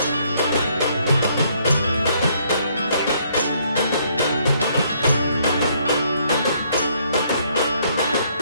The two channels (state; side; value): inverted; both; correlation -0.68